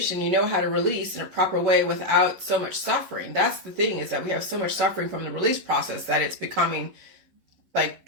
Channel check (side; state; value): left; late; 11 ms